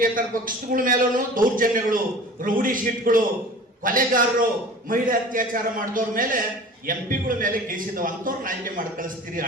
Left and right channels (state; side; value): normal; both; correlation 0.41